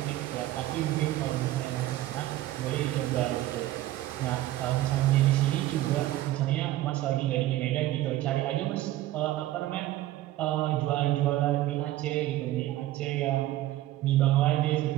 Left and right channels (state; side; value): quieter; left; 15.2 dB